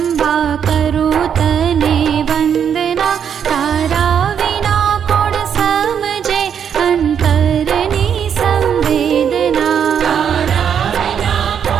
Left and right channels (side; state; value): left; quieter; 8.0 dB